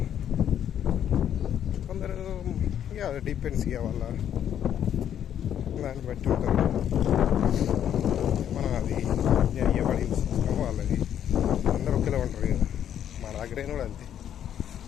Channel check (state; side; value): quieter; right; 9.8 dB